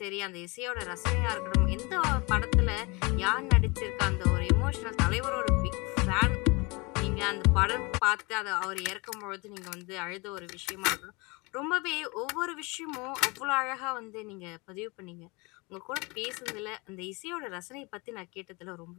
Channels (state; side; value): quieter; right; 27.1 dB